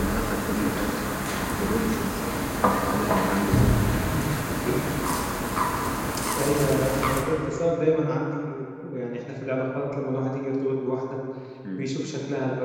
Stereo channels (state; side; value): identical; both; correlation 1.00